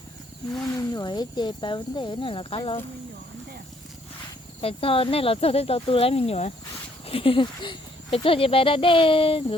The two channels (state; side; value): normal; both; correlation 0.66